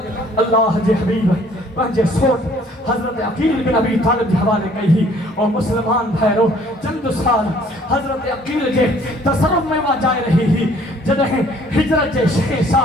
اللہ جے حبیب پنجے سوٹ حضرت عقیل بن ابی طالب جے حوالے کہی اور مسلمان بھائرو چند سال حضرت عقیل جے تصرف میں وہاں جائے رہی ہی جدہیں ہجرت جے 6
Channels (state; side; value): normal; both; correlation 0.58